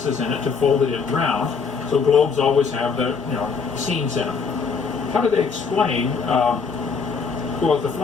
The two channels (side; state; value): right; quieter; 5.4 dB